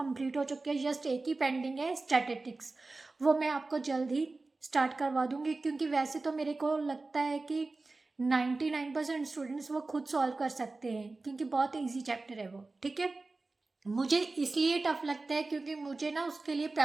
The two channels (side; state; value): left; quieter; 3.4 dB